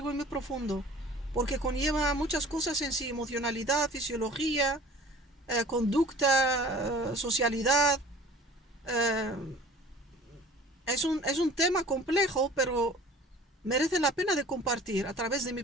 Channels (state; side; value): normal; both; correlation 0.46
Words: y muy profundo. Porque conlleva muchas cosas en sí. Emocionalidad, fisiología, conducta, socialidad. eh, es un tema complejo, pero merece la pena de compartir a través de mi